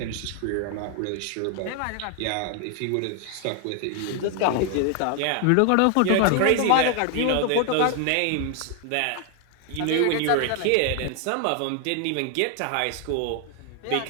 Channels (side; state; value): both; different; correlation 0.00